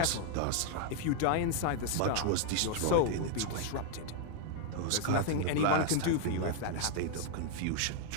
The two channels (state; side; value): different; both; correlation 0.00